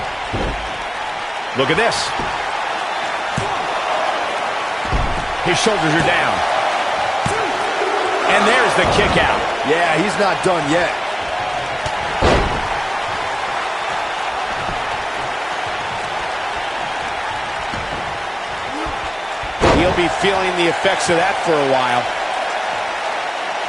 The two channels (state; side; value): identical; both; correlation 1.00